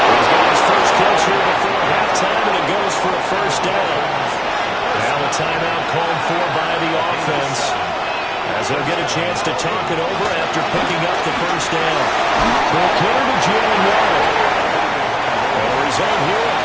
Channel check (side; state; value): both; identical; correlation 1.00